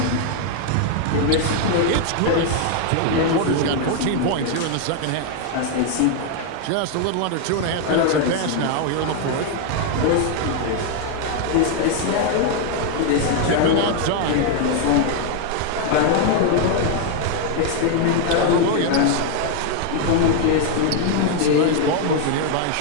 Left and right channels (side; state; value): both; different; correlation 0.00